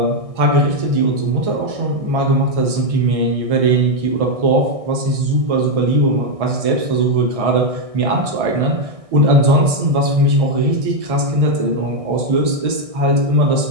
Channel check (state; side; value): late; left; 1.6 ms